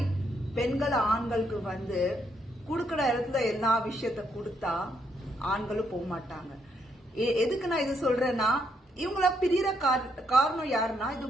பெண்கள் ஆண்களுக்கு கொடுக்கற இடத்துல எல்லா விஷயத்த கொடுத்தா ஆண்களும் போக மாட்டாங்க. எதுக்கு நான் இது சொல்றேன்னா, இவங்கள பிரிகிற காரணம் யாருன்னா, இது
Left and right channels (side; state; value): both; normal; correlation 0.75